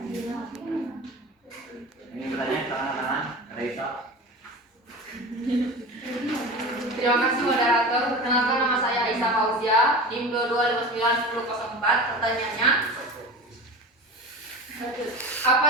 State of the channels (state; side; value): normal; both; correlation 0.31